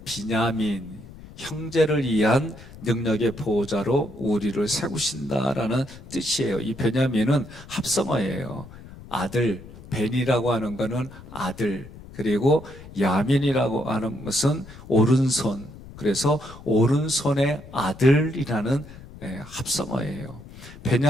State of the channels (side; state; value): left; noise; rumble, 17 dB below the sound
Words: 비냐민, 형제를 위한 능력의 보호자로 우리를 세우신다라는 뜻이에요. 이 베냐민은 합성어예요. 아들, 벤이라고 하는 것은 아들, 그리고 야민이라고 하는 것은 오른손. 그래서 오른손의 아들이라는 합성어예요.